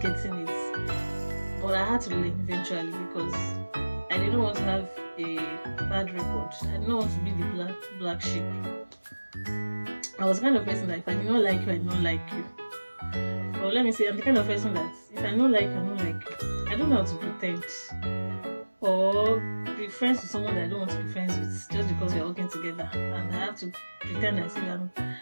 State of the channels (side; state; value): both; inverted; correlation -1.00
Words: getting it, but I had to learn eventually because I didn't want to have a bad record. I didn't want to be the black sheep. I was the kind of person that if I did not like you, I don't like you. Or let me say, I'm the kind of person that if I don't like you, I don't like you. I don't know how to pretend or be friends with someone that I don't want to be friends with just because we're working together, and I have to pretend as if